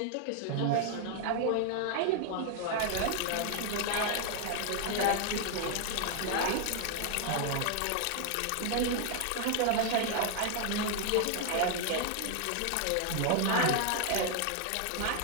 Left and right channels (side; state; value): both; different; correlation 0.00